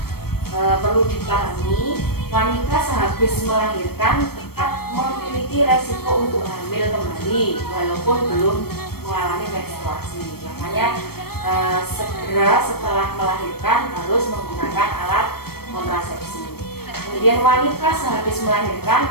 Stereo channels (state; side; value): late; right; 0.95 ms